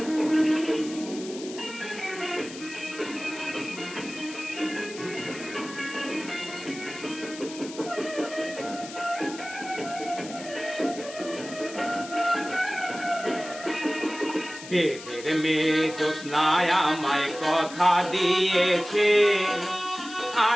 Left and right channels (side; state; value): left; noise; hiss, 14 dB below the sound